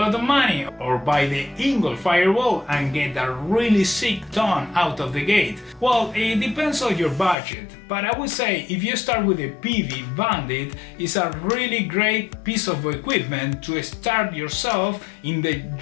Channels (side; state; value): right; drops out; at 7.4 s